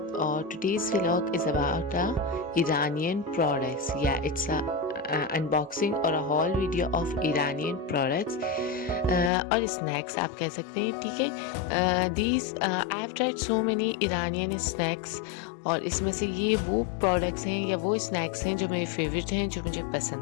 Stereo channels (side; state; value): right; drops out; at 9.3 s